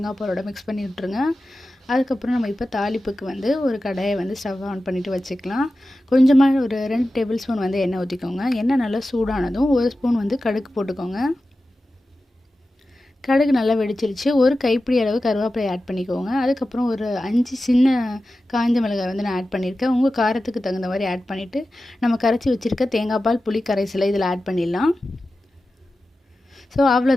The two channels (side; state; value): both; normal; correlation 0.94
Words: பாலோட மிக்ஸ் பண்ணி விட்டுருங்க. அதுக்கப்புறம் நம்ம இப்போ தாளிப்புக்கு வந்து ஒரு கடாயை வந்து ஸ்டவ் ஆன் பண்ணிவிட்டு வச்சுக்கலாம். கொஞ்சமாக ஒரு 2 டேபிள் ஸ்பூன் வந்து எண்ணெய் ஊற்றிக்கோங்க. எண்ணெய் நல்லா சூடானதும் 1 ஸ்பூன் வந்து கடுகு போட்டுக்கோங்க. கடுகு நல்லா வெடிச்சிருச்சு. ஒரு கைப்பிடி அளவு கருவேப்பிலை ஆட் பண்ணிக்கோங்க. அதுக்கப்புறம் ஒரு 5 சின்ன காஞ்ச மிளகாய் வந்து நான் ஆட் பண்ணியிருக்கேன். உங்கள் காரத்துக்கு தகுந்த மாதிரி ஆட் பண்ணிவிட்டு நம்ம கரைச்சி வச்சுருக்க தேங்காய் பால் புளி கரைசலை இதில் ஆட் பண்ணிடலாம். ஸோ